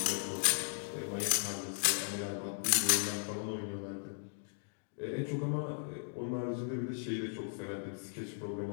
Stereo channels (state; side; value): silent; right; digital silence